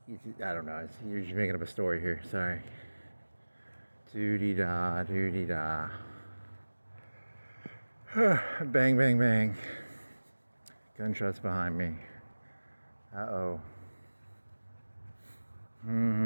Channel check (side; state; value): both; inverted; correlation -1.00